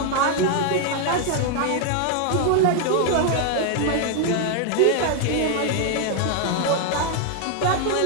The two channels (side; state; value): both; different; correlation 0.00